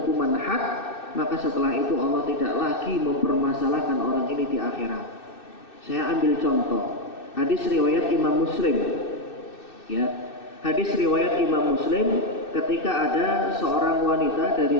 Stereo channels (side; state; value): right; late; 2.6 ms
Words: had, maka setelah itu Allah tidak lagi mempermasalahkan orang ini di akhirat. Saya ambil contoh hadis riwayat Imam Muslim, ya, hadis riwayat Imam Muslim ketika ada seorang wanita